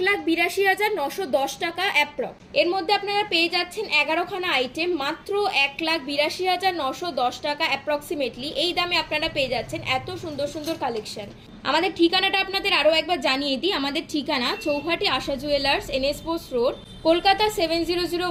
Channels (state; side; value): identical; both; correlation 1.00